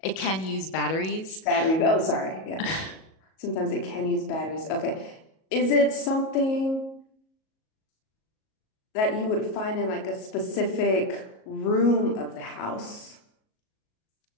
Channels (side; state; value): right; late; 37 ms